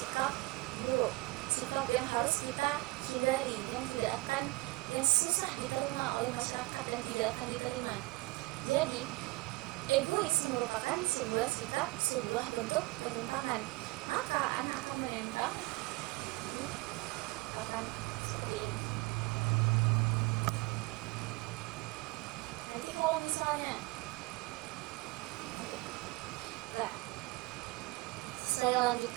buruk, sikap yang harus kita hindari, yang susah diterima oleh masyarakat dan tidak akan diterima. Jadi egois merupakan sebuah sikap, sebuah bentuk penyimpangan. Maka anak akan menempel di papan seperti ini. Nanti kalau misalnya ya, saya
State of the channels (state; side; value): quieter; left; 22.9 dB